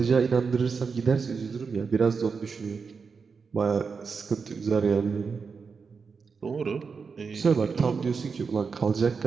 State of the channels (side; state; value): left; quieter; 5.3 dB